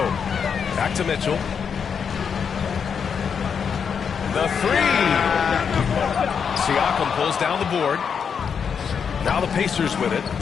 Back to Mitchell. The 3. Siakam pulls down the board. Now the Pacers with it.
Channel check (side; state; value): right; quieter; 6.7 dB